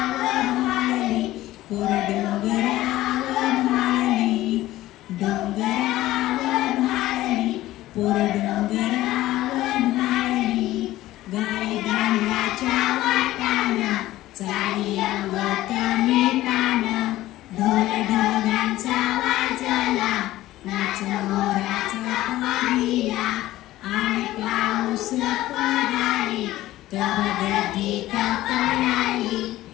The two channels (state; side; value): quieter; right; 15.8 dB